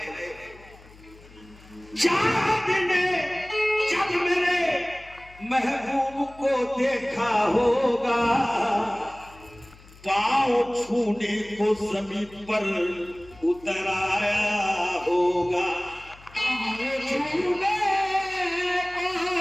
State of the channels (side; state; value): left; noise; hum, 23 dB below the sound